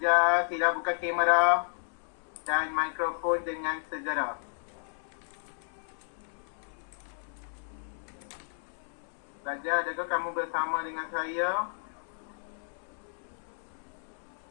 sila buka kamera dan mikrofon dengan segera. Pelajar, adakah kamu bersama dengan saya?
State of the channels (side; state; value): right; silent; 56 dB below the other